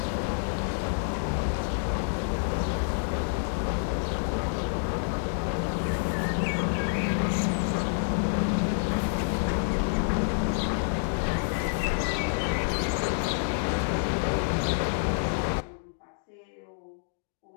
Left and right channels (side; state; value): right; silent; digital silence